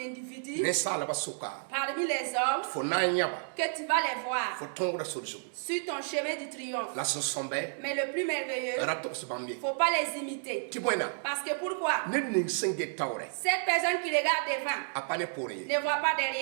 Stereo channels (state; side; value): silent; left; digital silence